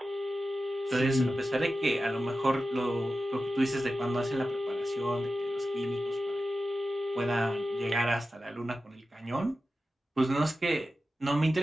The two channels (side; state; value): both; normal; correlation 0.93